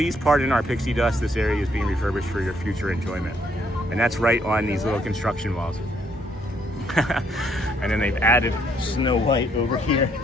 pardon our pixie dust. This area is being refurbished for your future enjoyment. And that's right on these little construction walls. And then they've added Snow White over here,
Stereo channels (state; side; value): normal; both; correlation 0.70